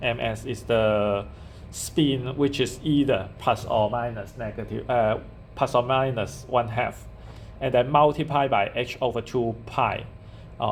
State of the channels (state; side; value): identical; both; correlation 1.00